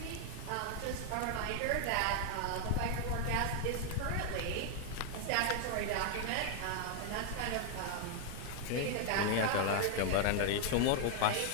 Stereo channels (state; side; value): different; both; correlation 0.00